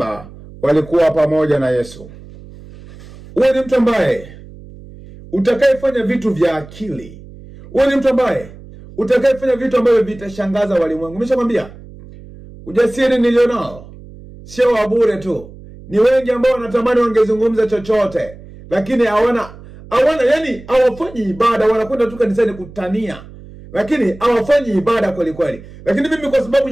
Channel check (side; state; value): right; noise; hum, 18 dB below the sound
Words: walikuwa pamoja na Yesu. Uwe ni mtu ambaye utakayefanya vitu vya akili. Uwe ni mtu ambaye utakayefanya vitu ambavyo vitashangaza walimwengu. Nimeshakwambia ujasiri nilionao sio wa bure tu. Ni wengi ambao wanatamani wangezungumza chochote, lakini hawana yani hawafanyi ibada, wanakwenda tu kanisani kutania, lakini hawafanyi ibada kweli kweli. Lakini mimi kwa sababu